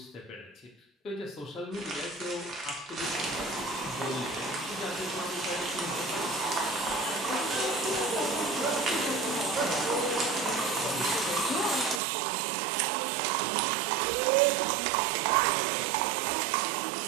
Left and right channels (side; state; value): left; drops out; at 12.0 s